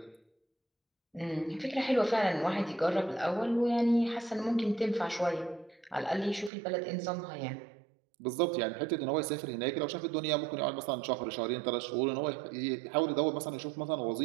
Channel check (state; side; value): drops out; left; at 6.5 s